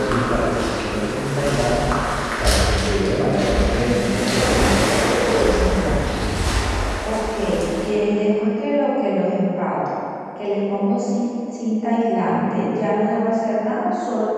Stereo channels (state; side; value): identical; both; correlation 1.00